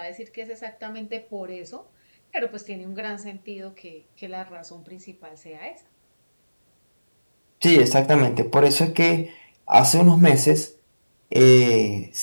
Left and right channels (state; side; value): inverted; both; correlation -1.00